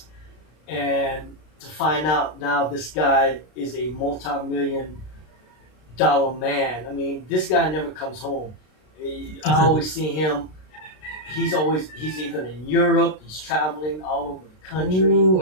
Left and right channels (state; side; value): late; right; 33 ms